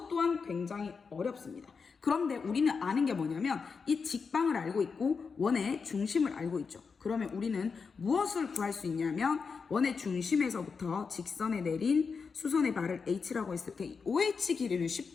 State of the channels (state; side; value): quieter; right; 5.3 dB